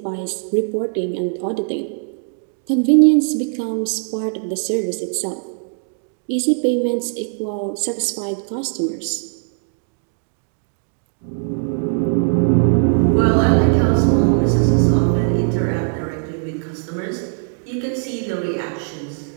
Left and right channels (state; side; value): silent; left; 66 dB below the other